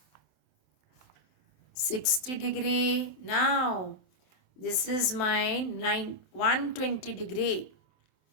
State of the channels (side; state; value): right; late; 27 ms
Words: 60 degree. Now this is my 120 degree,